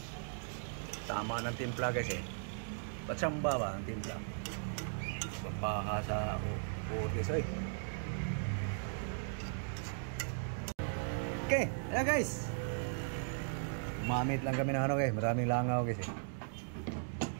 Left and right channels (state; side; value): silent; left; digital silence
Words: Tama ng timpla guys eh. Patsamba ba ang timpla? Papaha sa food guys eh. Okay, ayan guys. Mamit lang kami ng ano guys. Maraming langaw guys eh.